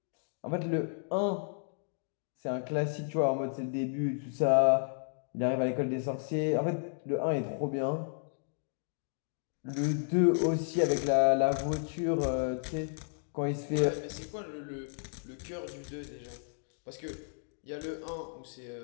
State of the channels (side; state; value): right; silent; digital silence